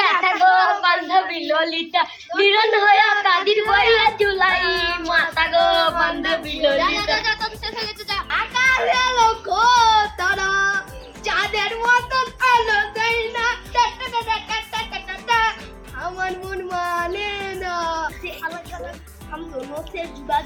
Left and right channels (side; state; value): both; identical; correlation 1.00